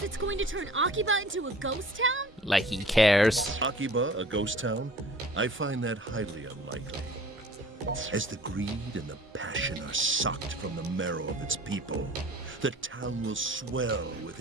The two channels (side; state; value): both; normal; correlation 0.47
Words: it's going to turn Akiba into a ghost town? Like he cares. Akiba, a ghost town? I find that highly unlikely. As the greed and the passion are sucked from the marrow of its people, the town will swell with